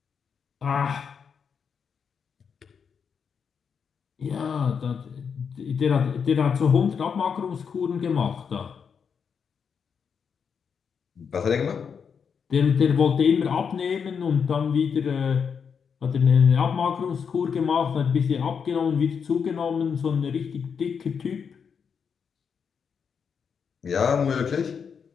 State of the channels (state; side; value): quieter; right; 6.5 dB